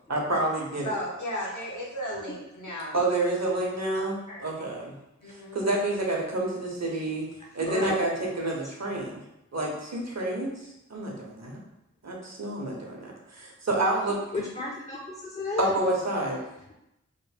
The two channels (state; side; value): normal; both; correlation 0.07